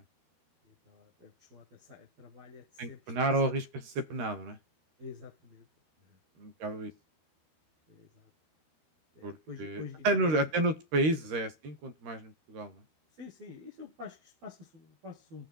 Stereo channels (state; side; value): late; left; 13 ms